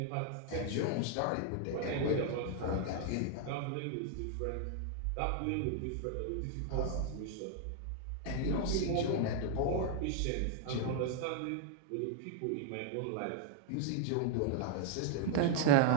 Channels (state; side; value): different; both; correlation 0.00